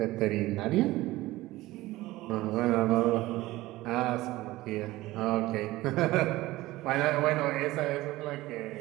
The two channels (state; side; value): quieter; left; 18.1 dB